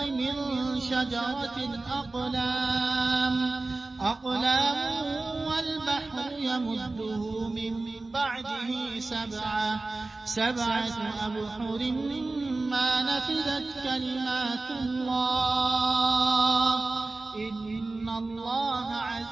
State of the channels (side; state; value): left; quieter; 3.2 dB